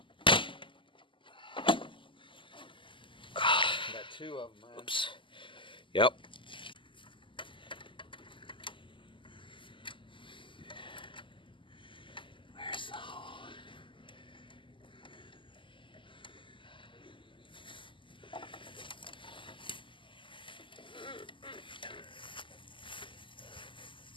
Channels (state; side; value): late; right; 0.25 ms